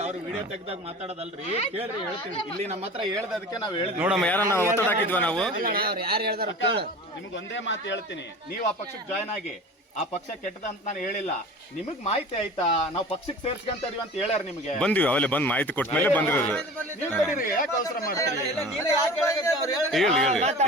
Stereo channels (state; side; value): normal; both; correlation 0.38